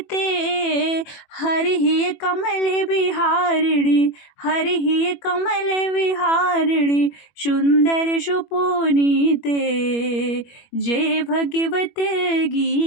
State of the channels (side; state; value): right; late; 21 ms